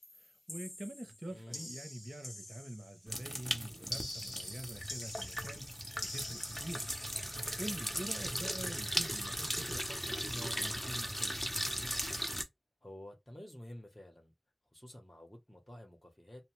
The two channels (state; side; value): normal; both; correlation 0.95